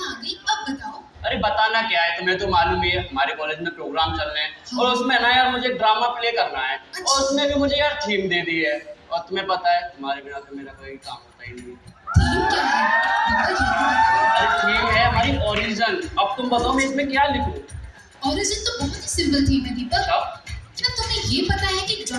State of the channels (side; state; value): both; identical; correlation 1.00